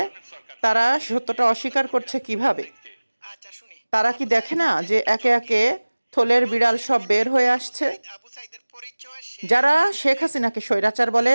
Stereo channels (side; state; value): both; inverted; correlation -1.00